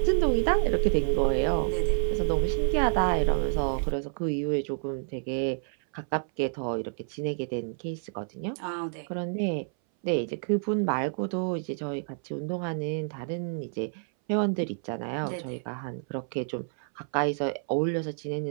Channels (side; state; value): left; silent; 59 dB below the other